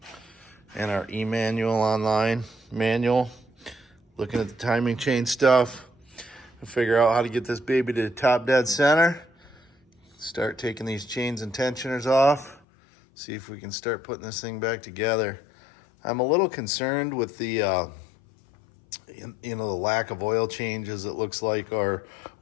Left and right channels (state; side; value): drops out; right; at 12.6 s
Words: And our e-manual online manual. Looking at the timing chain stuff. To figure out how to get this baby to the top dead center. Start taking these chains and tensioners off. See if we can start putting this thing back together. I'm a little concerned with the the lack of oil changes, it looks like, or